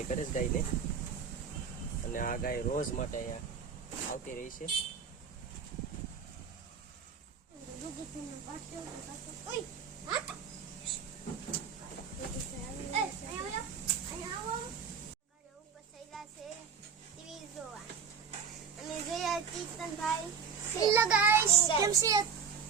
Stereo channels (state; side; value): quieter; left; 6.4 dB